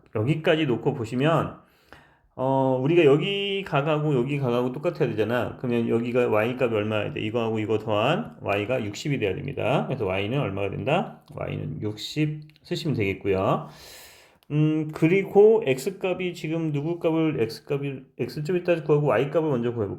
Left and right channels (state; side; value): identical; both; correlation 1.00